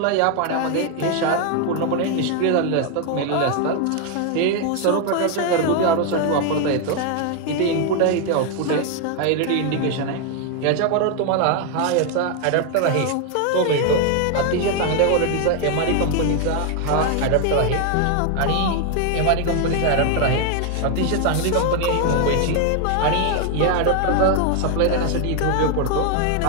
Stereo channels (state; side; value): different; both; correlation 0.01